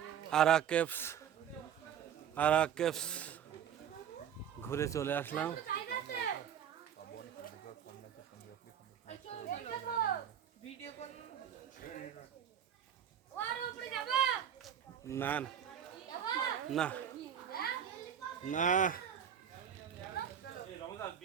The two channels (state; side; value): quieter; left; 8.9 dB